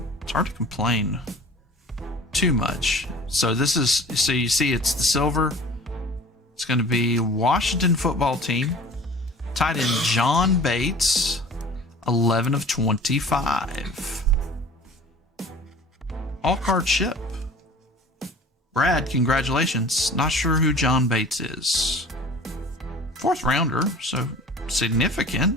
it's hard to complain too much. So this is, so you see it's the silver. It's going to be Washington football team. Tight end John Bates, 11 of 25. All card ship. Brad, congratulations. Not sure who John Bates is. 4th rounder, so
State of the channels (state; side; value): normal; both; correlation 0.44